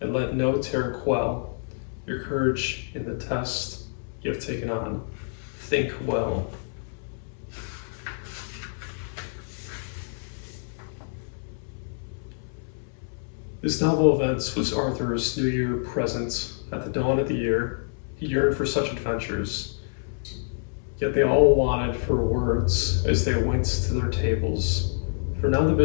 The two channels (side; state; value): right; silent; 60 dB below the other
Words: and let no terror quell your courage in the test you have taken on. Think well. This novel event was Arthur's New Year present. At the dawn of the year, he yearned for such adventures. Yet they all wanted for words as they went to their tables. For now the